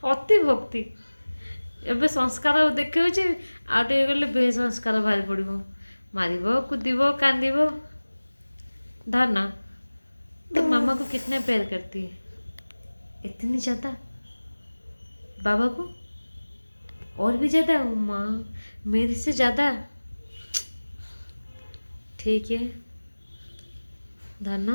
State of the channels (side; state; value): both; inverted; correlation -1.00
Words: अति भक्ति एबे संस्कार देखिए आटे गले बेसंस्कार बाहरी पड़ो मार कूदब कांद धरना। तो मामा को कितना प्यार करती है? इतनी ज़्यादा। बाबा को और भी ज़्यादा। माँ मेरे से ज़्यादा। ठीक है